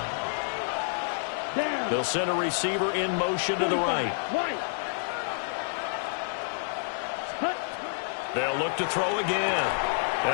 They'll send a receiver in motion to the right. They'll look to throw again.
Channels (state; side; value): silent; right; 59 dB below the other